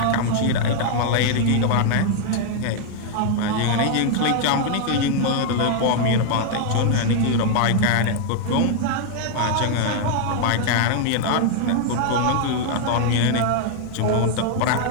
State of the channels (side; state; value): both; different; correlation 0.00